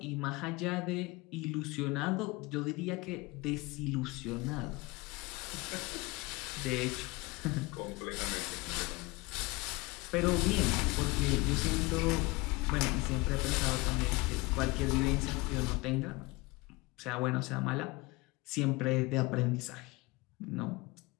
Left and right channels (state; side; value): quieter; right; 23.8 dB